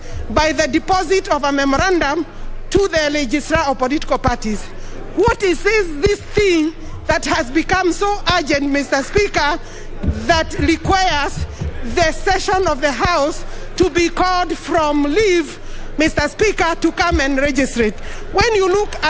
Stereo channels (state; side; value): identical; both; correlation 1.00